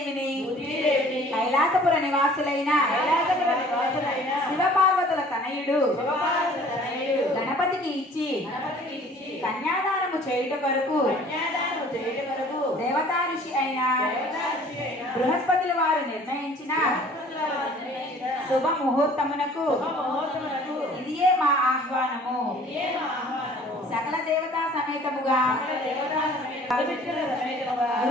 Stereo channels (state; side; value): normal; both; correlation 0.51